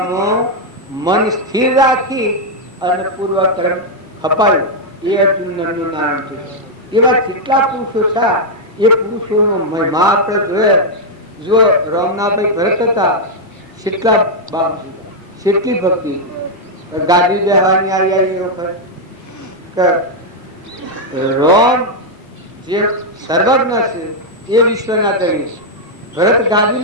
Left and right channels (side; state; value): both; normal; correlation -0.02